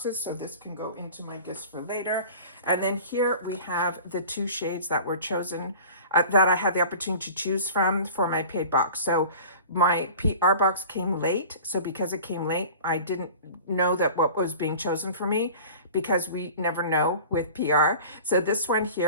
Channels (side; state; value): both; inverted; correlation -0.40